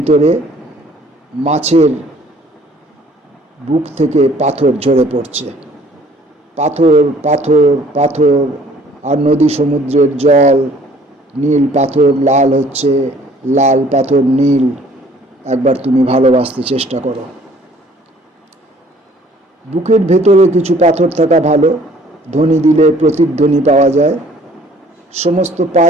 মাছের বুক থেকে পাথর ঝরে পড়ছে। পাথর পাথর পাথর, আর নদী সমুদ্রের জল, নীল পাথর লাল হচ্ছে, লাল পাথর নীল। একবার তুমি ভালোবাসতে চেষ্টা করো। বুকের ভেতরে কিছু পাথর থাকা ভালো, ধ্বনি দিলে প্রতিধ্বনি পাওয়া যায়। সমস্ত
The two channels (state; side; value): normal; both; correlation 0.56